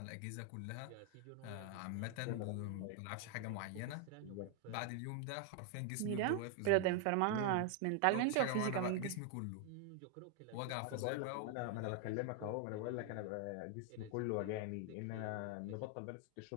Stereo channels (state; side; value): different; both; correlation 0.00